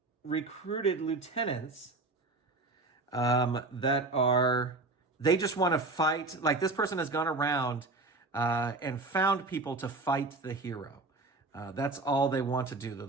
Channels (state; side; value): quieter; left; 3.3 dB